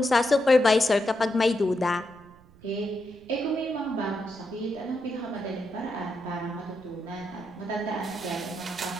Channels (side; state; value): right; noise; rumble, 25 dB below the sound